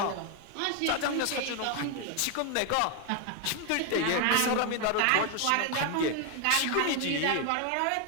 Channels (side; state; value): both; different; correlation 0.01